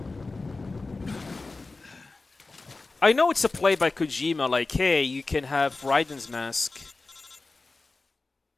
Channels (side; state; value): right; quieter; 3.6 dB